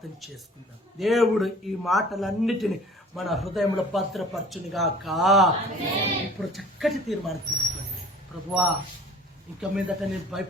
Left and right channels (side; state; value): both; normal; correlation 0.47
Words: చేసుకుందాం. దేవుడు ఈ మాటలన్నిటిని మన హృదయంలో భద్రపరచునిగాక. ఇప్పుడు చక్కటి తీర్మానం తీసుకోండి. ప్రభువా, ఇక మీదట నేను